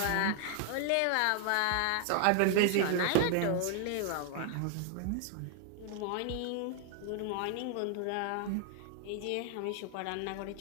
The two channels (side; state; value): both; different; correlation 0.00